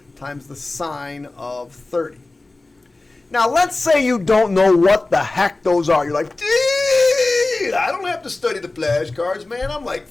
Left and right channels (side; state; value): right; quieter; 3.1 dB